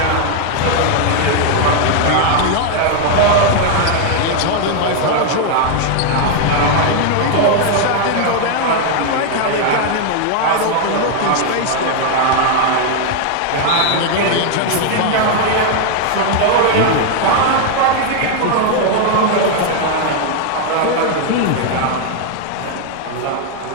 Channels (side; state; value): both; different; correlation 0.00